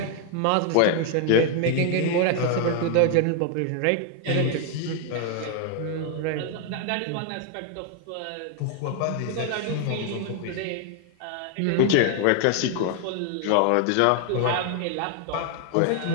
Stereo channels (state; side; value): different; both; correlation 0.01